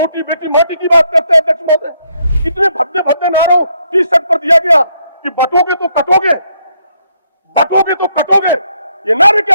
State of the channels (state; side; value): inverted; both; correlation -0.74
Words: बेटी माटी की बात करते हैं। अध्यक्ष महोदय, इतने भद्दे भद्दे नारों टी शर्ट पर दिया गया कि बटोगे तो कटोगे, बटोगे तो कटोगे। ये नारे